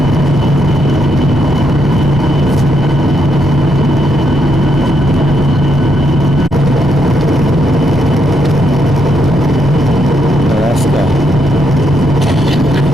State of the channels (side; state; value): both; normal; correlation 0.78